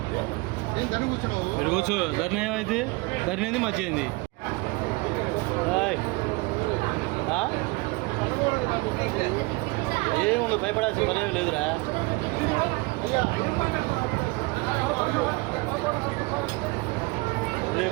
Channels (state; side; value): quieter; left; 25.4 dB